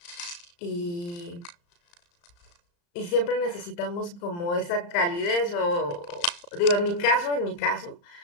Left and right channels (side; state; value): right; late; 35 ms